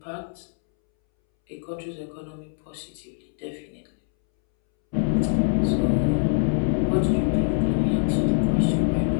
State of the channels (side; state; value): right; silent; 62 dB below the other